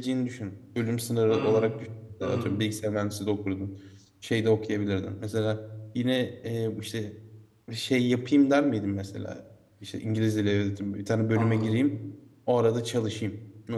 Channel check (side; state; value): both; identical; correlation 1.00